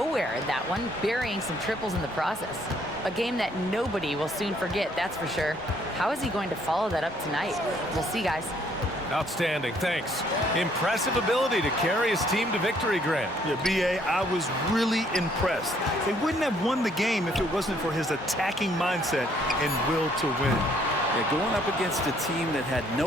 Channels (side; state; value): both; normal; correlation 0.65